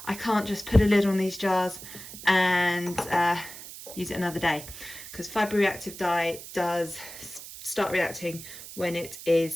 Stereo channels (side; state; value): right; noise; hiss, 13 dB below the sound